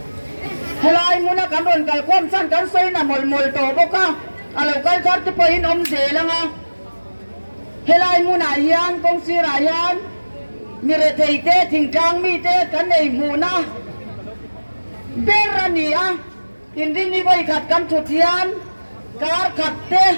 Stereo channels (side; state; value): both; inverted; correlation -1.00